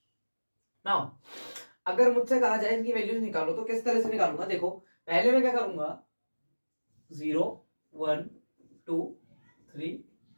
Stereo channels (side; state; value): both; inverted; correlation -1.00